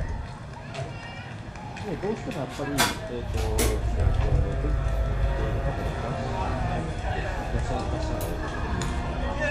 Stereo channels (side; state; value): both; identical; correlation 1.00